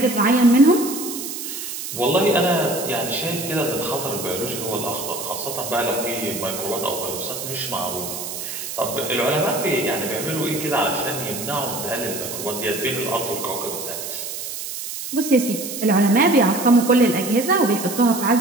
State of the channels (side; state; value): right; noise; hiss, 7 dB below the sound